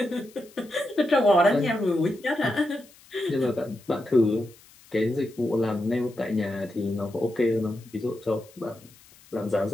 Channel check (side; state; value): left; noise; hiss, 25 dB below the sound